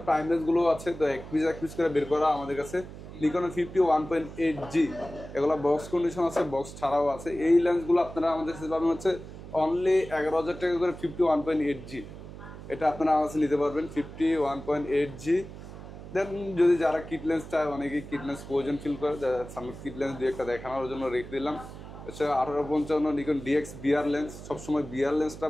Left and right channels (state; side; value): noise; right; hum, 13 dB below the sound